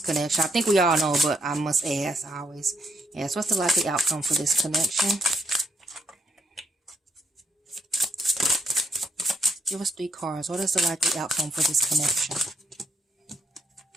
I think we all know, but I must ask. I always ask. What's the likely outcome for this connection? Give us 3 cards. What is the likely outcome for this connection?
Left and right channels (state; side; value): normal; both; correlation 0.74